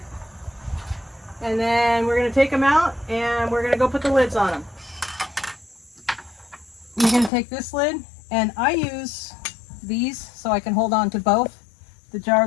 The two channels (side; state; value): right; drops out; at 7.3 s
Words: and then we're going to take them out, and we're going to go put the lids on them. You're going to take this lid, and I use these so I can hold on to both the jar